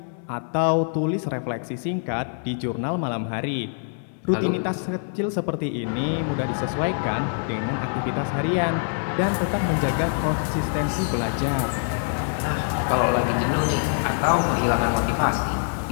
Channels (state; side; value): silent; right; digital silence